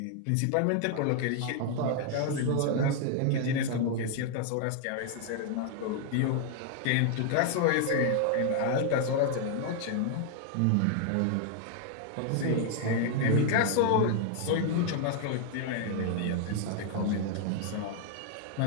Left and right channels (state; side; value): different; both; correlation 0.00